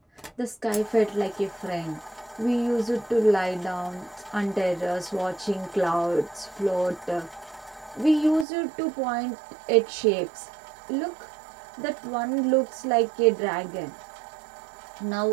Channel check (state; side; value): drops out; left; at 8.5 s